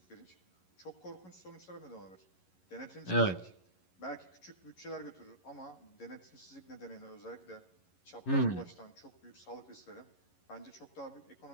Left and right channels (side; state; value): right; late; 11 ms